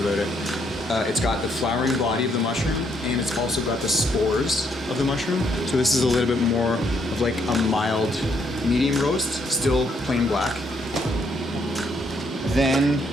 it. It's got the flowering body of the mushroom, and it's also got the spores of the mushroom. So this is a little bit more of like a mild medium roast, still plain black. Then,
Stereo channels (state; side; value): normal; both; correlation 0.72